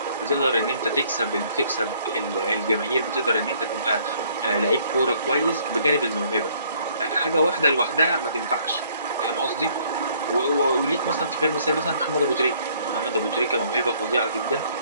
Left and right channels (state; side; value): inverted; both; correlation -0.62